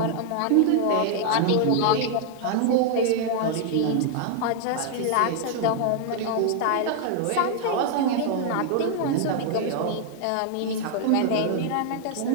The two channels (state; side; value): different; both; correlation 0.00